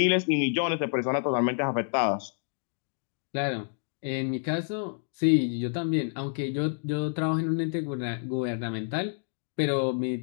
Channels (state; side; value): silent; right; digital silence